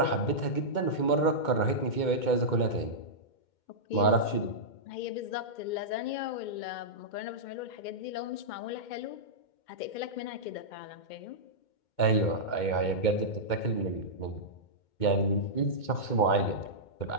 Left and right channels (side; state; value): right; late; 2.2 ms